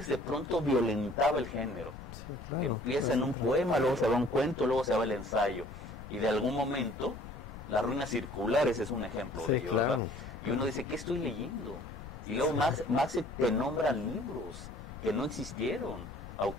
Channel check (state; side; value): noise; left; rumble, 13 dB below the sound